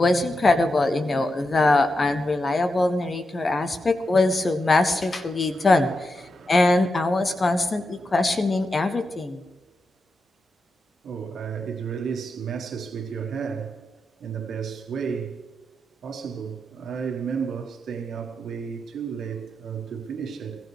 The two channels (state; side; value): normal; both; correlation 0.87